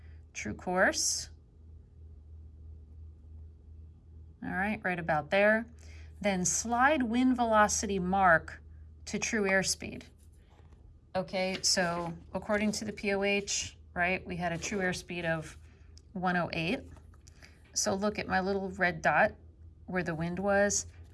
true course. All right, right about there. Then slide wind velocity mark to true airspeed. Okay, so according to the POH, right, we had a true airspeed of 108. So look at my little red dot where the wind was.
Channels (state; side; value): identical; both; correlation 1.00